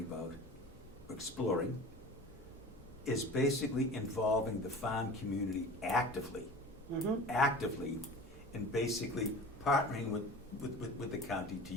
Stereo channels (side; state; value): both; normal; correlation 0.38